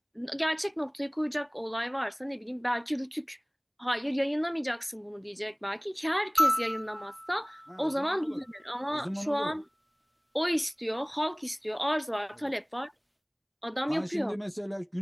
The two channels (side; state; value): both; identical; correlation 1.00